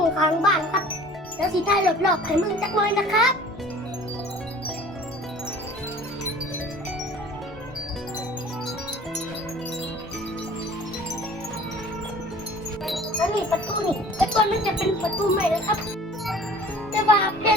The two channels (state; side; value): normal; both; correlation 0.46